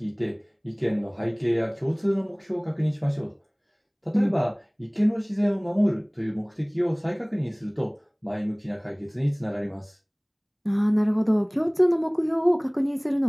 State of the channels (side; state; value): both; identical; correlation 1.00